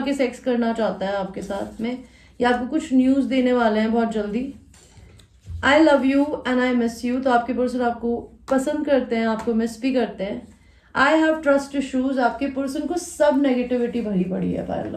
के सेक्स करना चाहता है आपके साथ में, या आपको कुछ न्यूज़ देने वाले हैं बहुत जल्दी। आई love you and I miss you, तो आपके पर्सन आपको पसंद करते हैं, आपको मिस भी करते हैं। आई हैव ट्रस्ट इशूज, आपके पर्सन को सब नेगेटिविटी भरी पड़ी है। पाइल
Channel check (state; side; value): identical; both; correlation 1.00